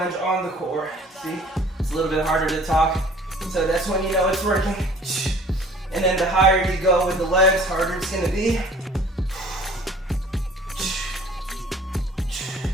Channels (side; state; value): both; normal; correlation 0.50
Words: on the core. See, it's a little bit harder to talk. So that's when you know it's working. And then the higher you go with the legs, harder it's gonna be.